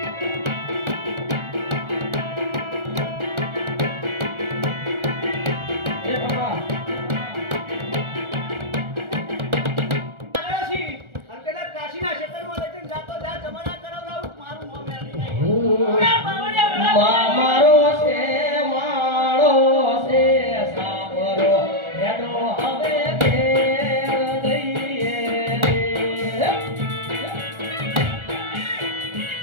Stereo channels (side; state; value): left; late; 1.4 ms